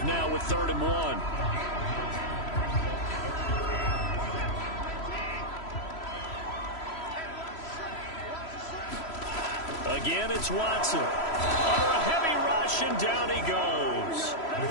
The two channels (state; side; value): late; right; 3.0 ms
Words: now with 3rd and 1. Again, it's Watson. Under a heavy rush, and down he goes.